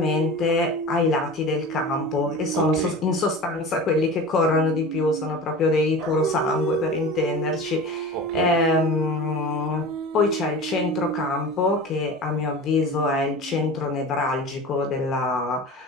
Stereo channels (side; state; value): both; normal; correlation 0.34